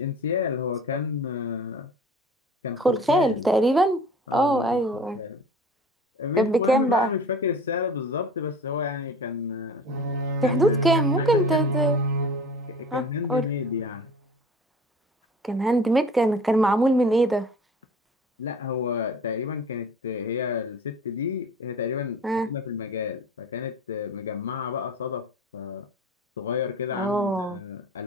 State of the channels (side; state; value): both; normal; correlation 0.42